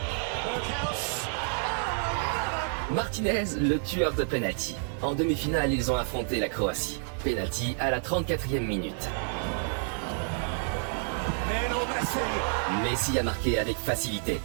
Martinez, le tueur de penalty. En demi-finale, ils ont affronté la Croatie. Penalty à la 34e minute. Messi a marqué avec facilité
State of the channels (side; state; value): left; silent; 58 dB below the other